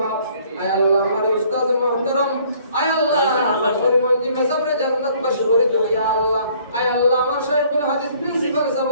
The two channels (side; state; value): both; inverted; correlation -0.59